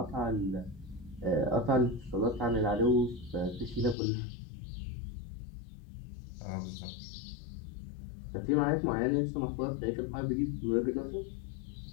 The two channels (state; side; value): drops out; right; at 4.0 s